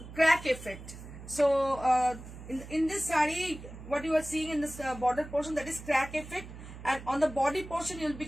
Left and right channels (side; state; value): right; noise; hum, 14 dB below the sound